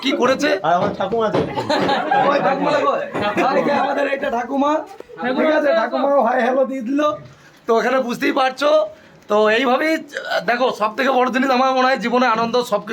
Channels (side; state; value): both; identical; correlation 1.00